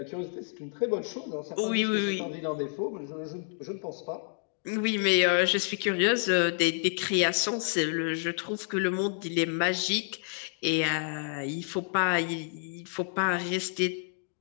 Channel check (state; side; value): silent; right; 58 dB below the other